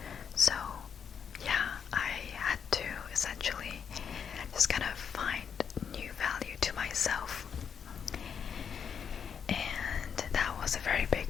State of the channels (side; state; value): right; quieter; 7.3 dB